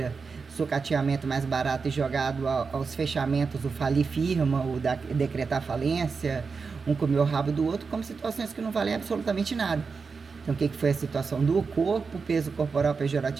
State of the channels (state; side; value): quieter; left; 5.0 dB